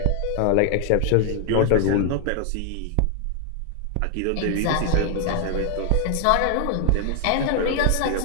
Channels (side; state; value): both; different; correlation 0.00